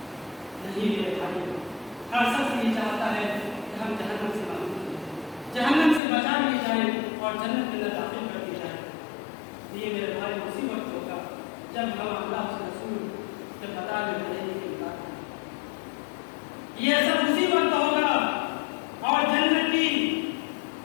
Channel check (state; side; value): drops out; right; at 6.0 s